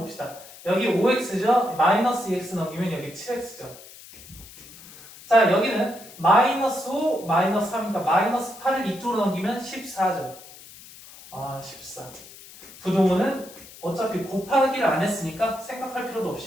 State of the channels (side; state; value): left; noise; hiss, 19 dB below the sound